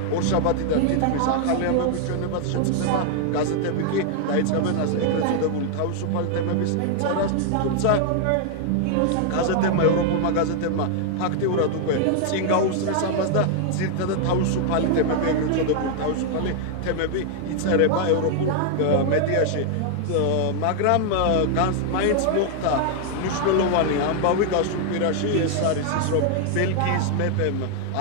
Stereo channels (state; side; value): different; both; correlation 0.00